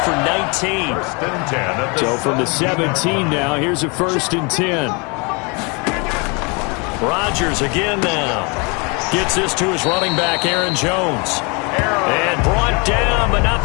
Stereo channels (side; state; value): right; quieter; 30.9 dB